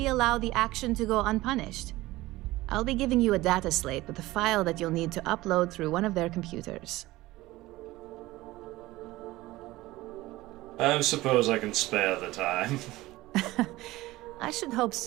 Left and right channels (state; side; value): quieter; left; 18.2 dB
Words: allow the action to go unpunished. I'll be giving you a data slate with a file that you'll need to upload through one of their computers. I suppose I can spare the time. I should hope